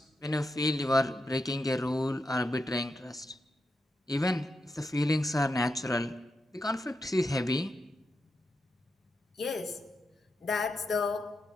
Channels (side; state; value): both; normal; correlation 0.86